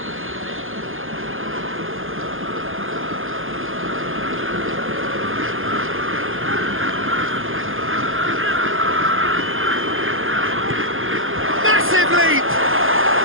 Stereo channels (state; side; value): late; left; 0.59 ms